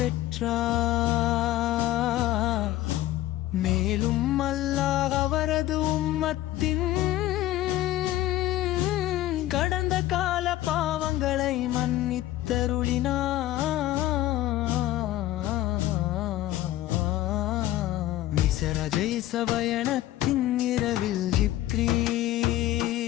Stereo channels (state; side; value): quieter; right; 14.8 dB